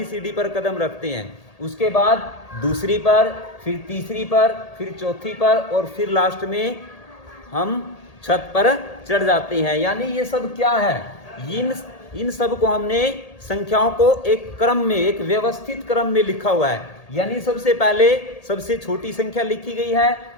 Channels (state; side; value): late; right; 1.8 ms